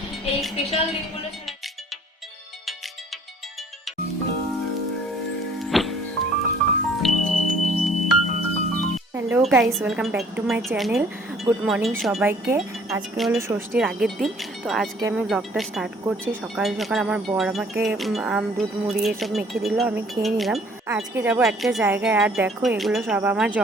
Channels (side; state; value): both; normal; correlation 0.57